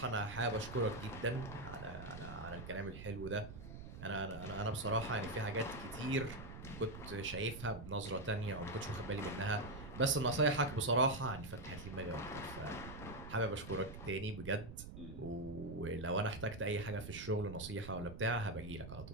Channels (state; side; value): noise; right; rumble, 11 dB below the sound